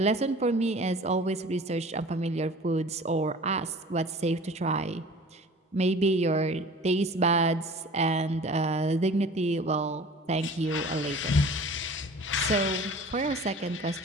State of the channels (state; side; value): normal; both; correlation 0.43